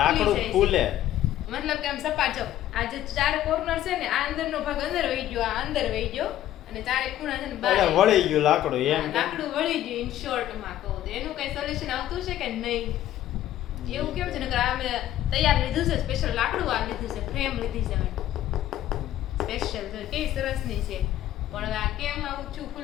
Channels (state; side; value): quieter; right; 12.9 dB